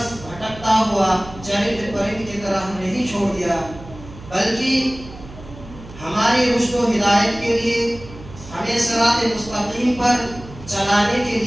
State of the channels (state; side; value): noise; right; hum, 17 dB below the sound